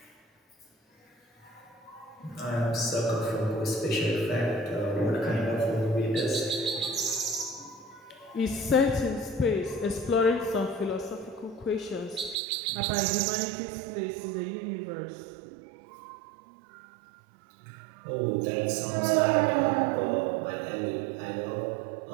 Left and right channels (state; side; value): drops out; left; at 12.4 s